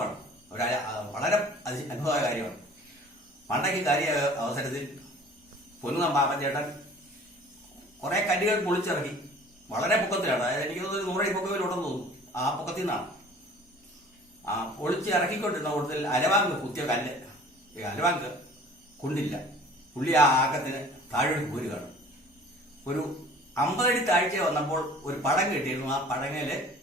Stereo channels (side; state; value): both; normal; correlation 0.48